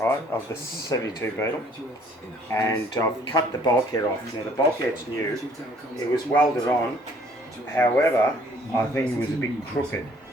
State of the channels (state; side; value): normal; both; correlation 0.59